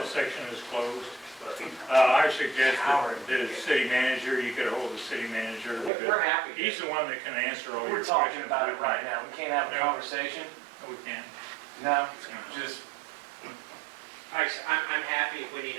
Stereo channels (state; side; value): drops out; left; at 5.9 s